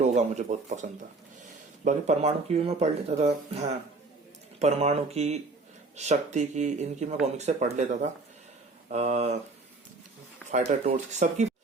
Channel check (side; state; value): left; quieter; 3.5 dB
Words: मुझे बहुत पसंद था। बाकी परमाणु की भी मैं पढ़ लेता था, हाँ परमाणु की, शक्ति की, इनकी मैं कॉमिक्स से पढ़ लेता था, फाइटर टोर्च सबकी,